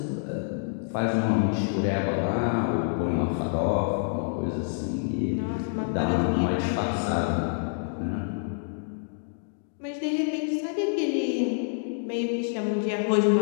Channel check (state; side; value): silent; right; digital silence